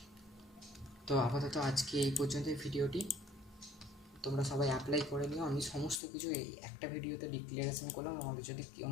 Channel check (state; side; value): drops out; right; at 6.0 s